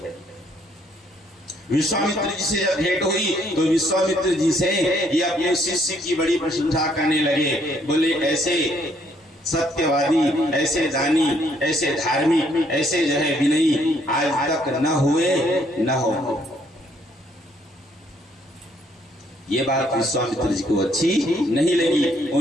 विश्वामित्र जी से जब भेंट हुई तो विश्वामित्र जी से ये अपने शिष्य की बड़ी प्रशंसा करने लगे। बोले ऐसे सत्यवादी, ऐसे दानी, ऐसे धार्मिक, ऐसे जो है विनयी आज तक न हुए न हो। ये बात विश्वामित्र जी को अच्छी नहीं लगी।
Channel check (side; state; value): both; normal; correlation 0.68